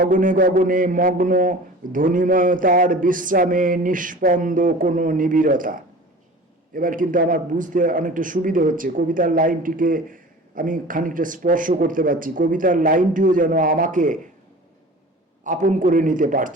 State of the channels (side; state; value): both; normal; correlation 0.40